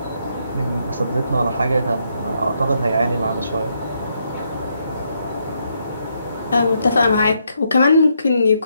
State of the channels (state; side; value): inverted; both; correlation -0.77